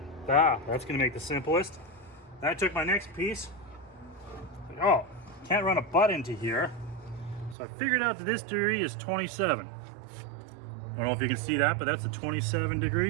that's gonna make the simplest. Then I took my next piece, like, oh, can't run a butt into here. So I figured out that this degree is 27. I don't know if you can see that, but that's a 27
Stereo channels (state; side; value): drops out; left; at 7.6 s